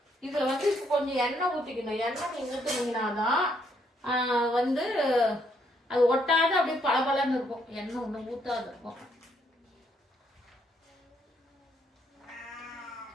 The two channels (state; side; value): normal; both; correlation 0.72